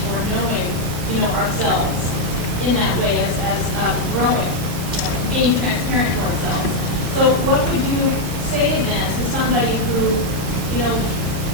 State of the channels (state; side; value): late; left; 14 ms